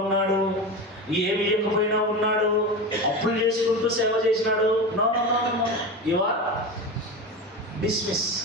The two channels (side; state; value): both; normal; correlation 0.24